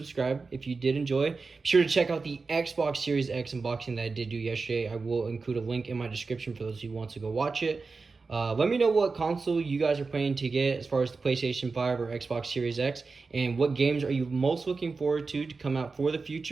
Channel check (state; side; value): quieter; left; 4.3 dB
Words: if you did enjoy. Be sure to check out the Xbox Series X unboxing that I did do yesterday. I will include a link in my description for those who want to go watch it. Let me know what console you guys are planning to get as far as the PlayStation 5 or Xbox Series X. And what games are you most looking forward to come out for the